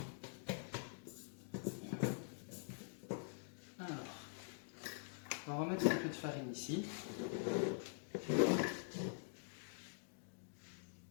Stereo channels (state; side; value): silent; right; digital silence